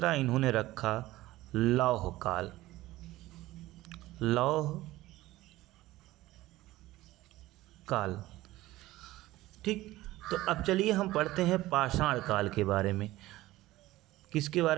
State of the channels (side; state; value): left; quieter; 17.1 dB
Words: इन्होंने रखा लौह काल। ठीक, तो अब चलिए हम पढ़ते हैं पाषाण काल के बारे में। किसके